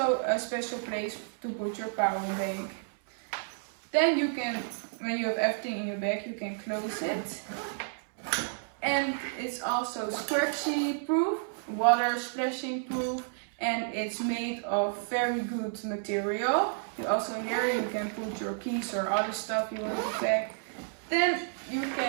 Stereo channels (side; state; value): left; silent; digital silence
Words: a special place to put your power bank. Then you can, when you have everything in your bag, you can close it. And it's also scratchy proof, water splashing proof, and it's made of very good material. You also here you can put your keys or other stuff you want to pack. Then you